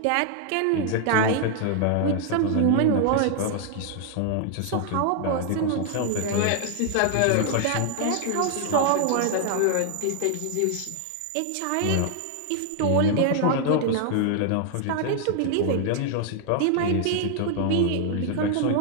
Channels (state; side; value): different; both; correlation 0.00